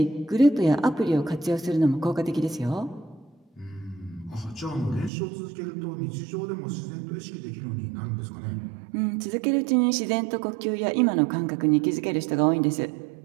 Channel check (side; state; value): left; drops out; at 5.1 s